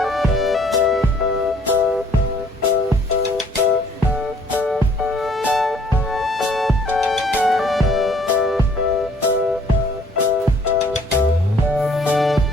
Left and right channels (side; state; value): both; normal; correlation 0.59